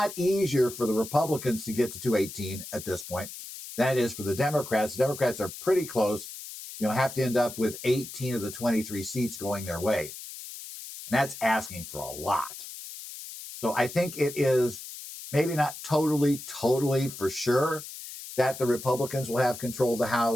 easier for the Republicans to get to 218 at this point than it is for the Democrats. The Democrats are pretty close, have to end up with 18 of the 23 seats going their way. And that's asking for a lot. So I think it is maybe not totally for sure that the Republicans will have control of the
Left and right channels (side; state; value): left; noise; hiss, 12 dB below the sound